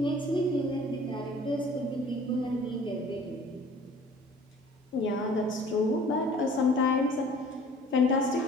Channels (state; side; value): normal; both; correlation 0.50